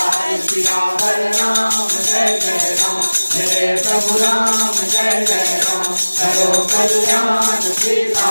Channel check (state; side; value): inverted; both; correlation -1.00